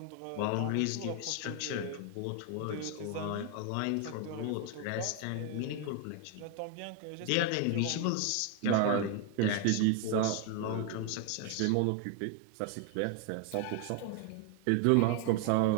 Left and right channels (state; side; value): different; both; correlation 0.01